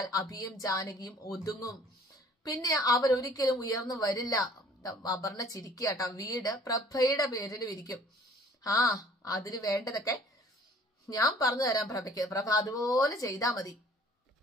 അഭിയും ജാനകിയും ഒതുങ്ങും. പിന്നെ അവരൊരിക്കലും ഉയർന്നു വരില്ല. അപർണ ചിരിക്കാട്ടോ. വീട് പ്രഭയുടെ പേരിലും ഇരിക്കും. അതിന് വേണ്ടതൊക്കെ ഞാൻ പറഞ്ഞു തരാം പ്രഭയ്ക്ക്. പ്രഭ അതുപോലെ ചെയ്താ മതി.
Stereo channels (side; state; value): both; normal; correlation 0.54